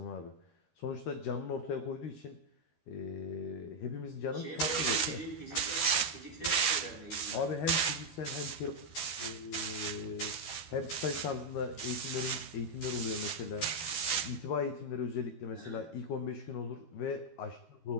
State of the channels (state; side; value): late; right; 13 ms